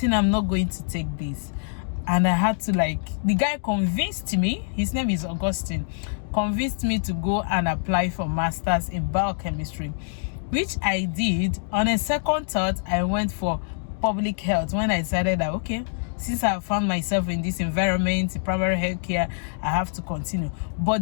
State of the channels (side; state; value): right; silent; digital silence